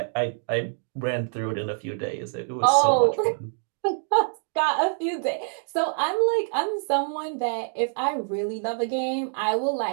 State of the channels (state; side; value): silent; left; digital silence